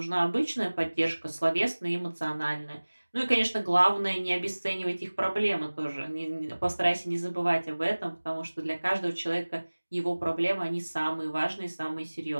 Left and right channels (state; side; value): inverted; both; correlation -1.00